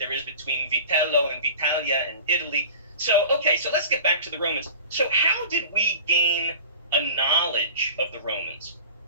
is between Vitello and Vitalia and Italy. So so let's get back to the Romans. So how did we gain a knowledge of the Romans?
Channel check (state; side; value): inverted; both; correlation -0.40